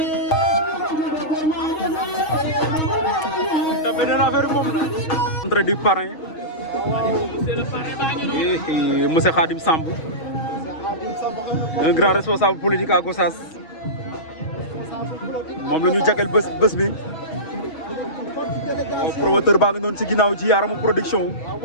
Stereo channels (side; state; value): right; late; 6.3 ms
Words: Dambe nee na affaire moom la entrée du parrain monsieur Khadim Samb un grand responsable politique à Gossas moom la ñu jagleel bés bi promoteur baa ngi noonu ci ginnaaw ci Yaramu production